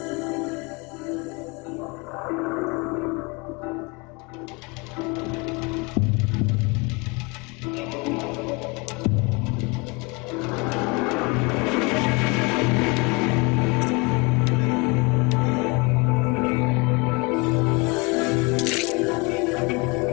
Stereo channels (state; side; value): quieter; right; 28.6 dB